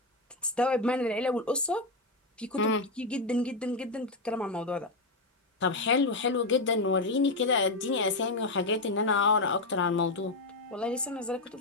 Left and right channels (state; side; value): quieter; right; 3.0 dB